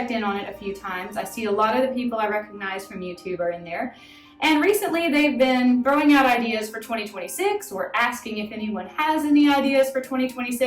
in on it a few times. I see a lot of the people I recognize from YouTube are in there. And recently they've been throwing out ideas for 2026 or asking if anyone has any ideas for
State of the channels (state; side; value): identical; both; correlation 1.00